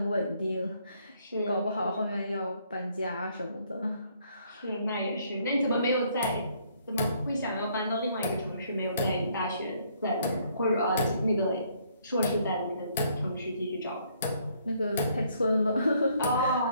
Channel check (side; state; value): both; inverted; correlation -0.67